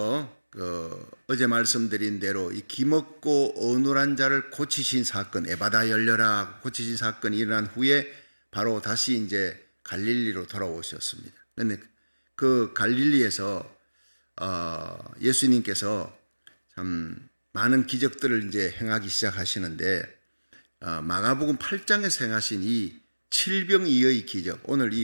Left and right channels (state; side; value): inverted; both; correlation -1.00